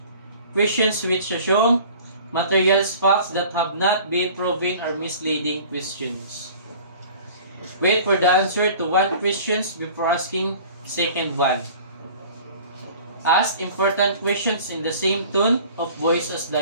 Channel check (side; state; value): both; inverted; correlation -0.46